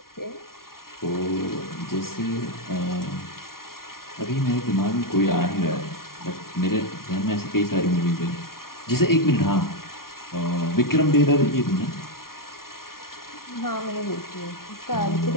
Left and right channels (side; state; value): right; late; 0.93 ms